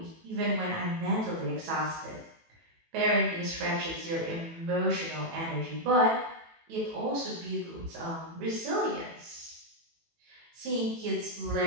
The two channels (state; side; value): late; left; 18 ms